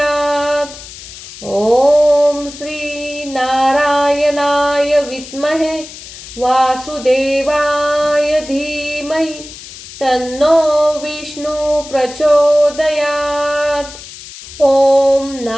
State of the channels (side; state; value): left; noise; hiss, 15 dB below the sound